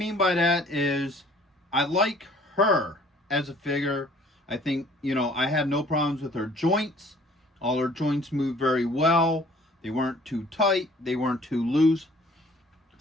by that is I like her as a figure. I think, I had no problems with her joints. All her joints moved very well. They weren't too tight. They weren't too loose.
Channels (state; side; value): normal; both; correlation 0.55